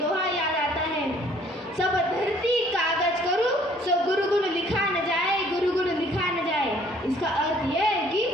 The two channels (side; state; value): both; normal; correlation 0.58